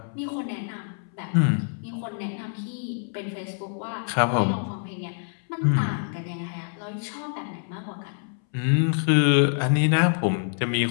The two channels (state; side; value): silent; right; 61 dB below the other